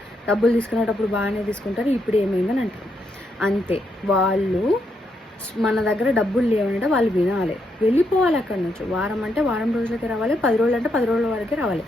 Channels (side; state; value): both; normal; correlation 0.79